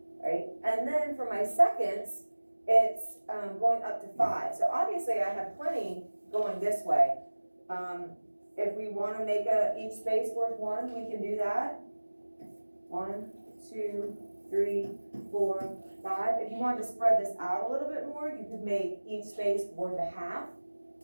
right? And then for my seconds, it's going up to 5. So obviously I have plenty going this way. If we want to make each space worth 1, we can do that. 1, 2, 3, 4, 5. If you wanted to spread this out a little bit more, you could make each space worth a half,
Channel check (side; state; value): both; inverted; correlation -1.00